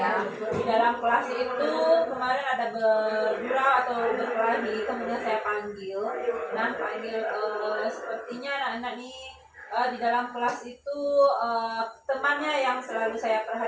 di dalam kelas itu kemarin ada berdura atau berkelahi, kemudian saya panggil. Nah sepertinya anak-anak ini di dalam kelas itu temannya yang selalu saya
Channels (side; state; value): both; identical; correlation 1.00